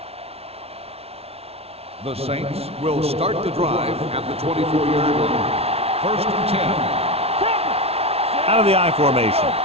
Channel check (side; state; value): left; late; 0.30 ms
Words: The Saints will start the drive at the 24-yard line. First and 10. Out of the I formation.